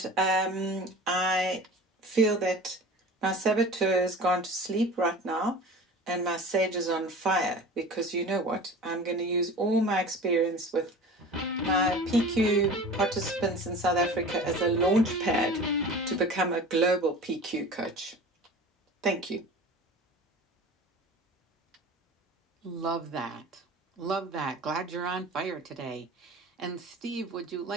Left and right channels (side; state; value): both; normal; correlation 0.38